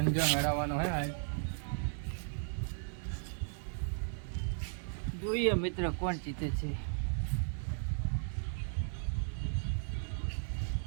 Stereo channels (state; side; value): silent; left; digital silence